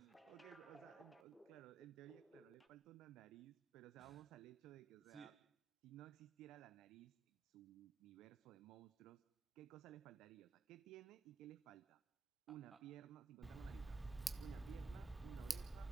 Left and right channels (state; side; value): quieter; left; 3.8 dB